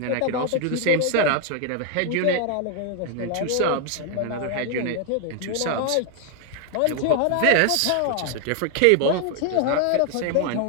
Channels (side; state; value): both; different; correlation 0.00